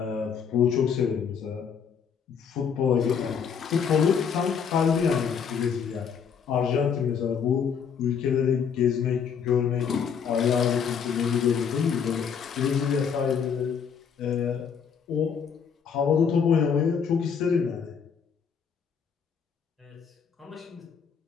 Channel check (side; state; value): right; quieter; 6.9 dB